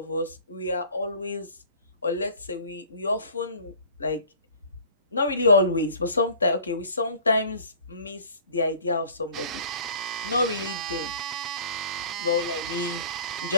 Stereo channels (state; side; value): inverted; both; correlation -0.47